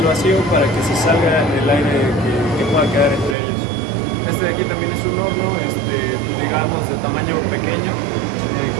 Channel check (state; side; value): drops out; left; at 3.4 s